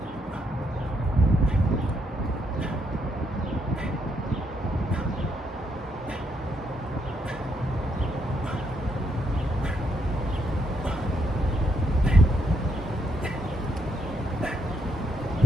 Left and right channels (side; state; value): both; normal; correlation 0.77